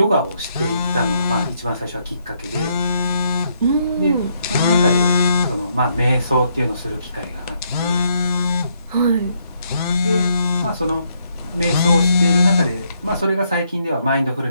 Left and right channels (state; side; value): inverted; both; correlation -0.74